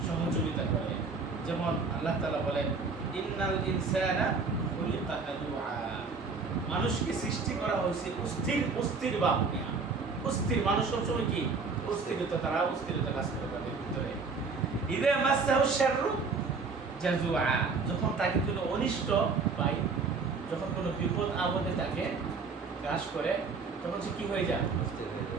সহযোগিতা করে। যেমন আল্লাহ তাআলা বলেন, ইন্নাল ইনসানা খুলিকা হালুআ। মানুষকে সৃষ্টি করা হয়েছে অস্থির ভাব নিয়ে। অস্থির মানুষ সবসময় কি অস্থিরতা, তারা অস্থিরতা কাজ করে তাদের ভিতরে। ইযা মাসাহু শাররু জাজুআ। যখন তাকে কোনো অনিষ্ট পায়, যখন কোনো বিপদ আপদে তাকে গ্রাস করে, তখন সে কি হয়ে যায়?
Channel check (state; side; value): quieter; left; 4.5 dB